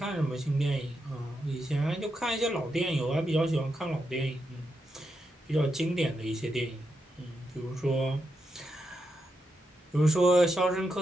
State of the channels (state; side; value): normal; both; correlation 0.84